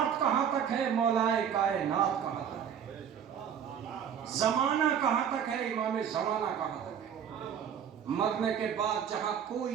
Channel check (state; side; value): quieter; left; 8.3 dB